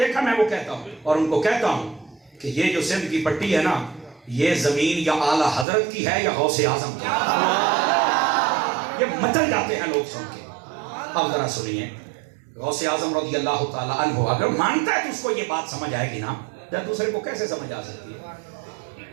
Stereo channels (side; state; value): left; drops out; at 5.7 s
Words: میں وہ کہتا ہوں، اور ان کو کہتا ہوں کہ یہ جو سندھ کی پٹی ہے نا، یہ زمین یا اعلیٰ حضرت کی ہے یا غوث اعظم کی ہے، یہ مچل جاتے ہیں لوگ سن کے۔ اب ذرا سنیے، غوث اعظم رضی اللہ تعالیٰ عنہ اگر مانتا ہے تو اس کو یہ بات سمجھ آئے گی نا، یا دوسرے کو کیسے سمجھ آ سکتی ہے؟